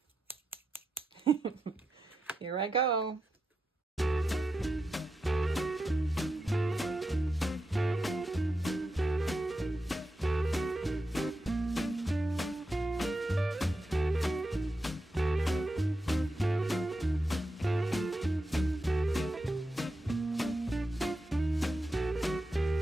here I go.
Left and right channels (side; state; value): both; normal; correlation 0.88